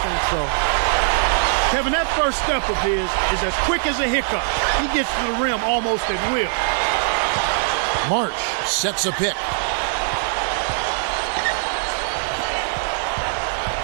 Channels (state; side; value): silent; left; 60 dB below the other